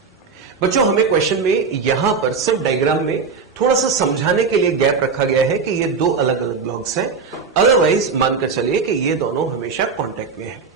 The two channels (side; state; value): left; quieter; 5.2 dB